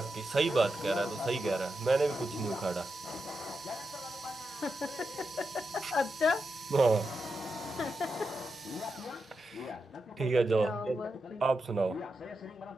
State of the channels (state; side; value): normal; both; correlation 0.87